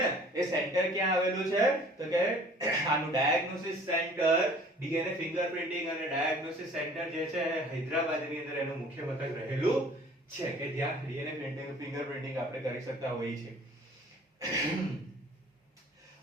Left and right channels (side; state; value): both; normal; correlation 0.51